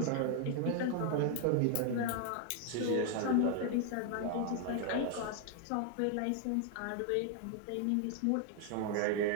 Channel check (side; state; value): both; different; correlation 0.00